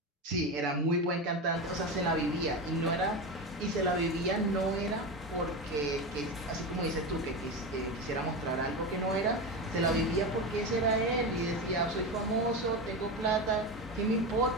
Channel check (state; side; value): normal; both; correlation 0.20